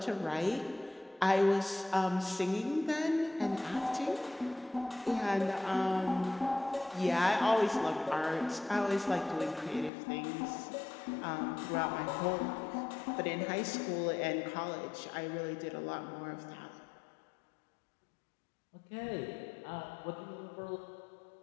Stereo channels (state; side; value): drops out; right; at 9.9 s